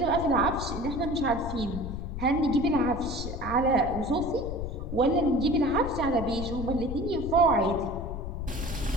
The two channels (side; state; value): left; noise; rumble, 6 dB below the sound